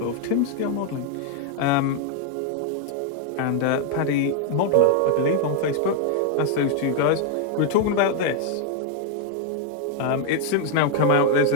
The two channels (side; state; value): both; different; correlation 0.00